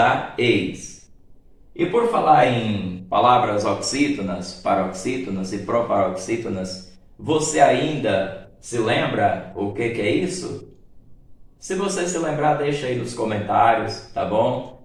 eis. E por falar em palavras oxítonas, paroxítonas e proparoxítonas, você ainda se lembra o que é isso? Se você se lembrar, deixa aí nos comentários, tá bom?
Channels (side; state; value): both; identical; correlation 1.00